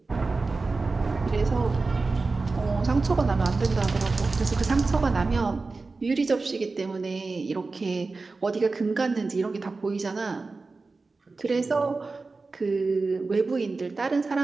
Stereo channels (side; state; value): left; quieter; 3.8 dB